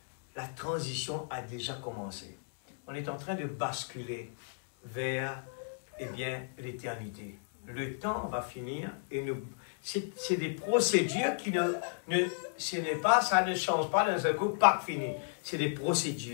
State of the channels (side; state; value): right; silent; digital silence